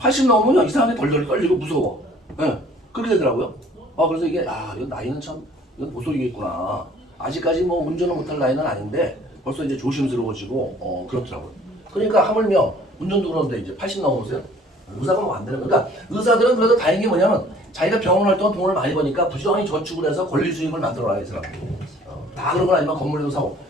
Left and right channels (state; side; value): normal; both; correlation 0.54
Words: 넘으면 이상하게 덜덜 떨리고 무서워. 그렇게 되더라고요. 그래서 이게 이거 나이는 참 이건 모쏠이겠구나. 아직까지 뭐 운전을 못할 나이는 아닌데 벌써 이제 조심스러워지고 그렇더라고요. 그러니까 하물며 운전도 그러는데 이제 80 넘어보세요. 의사가 뭐 안 되는 거니까 그러니까 의사들은 그래도 다행인 게 뭐냐면 자기가 병원 활동 돈을 많이 버니까 부지런히 저축을 해서 권리 수익을 만들어놔요. 이 사람들이. 다 그런 건 아니면 건물도 사고